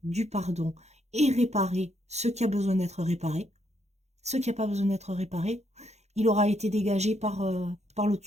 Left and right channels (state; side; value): late; left; 0.32 ms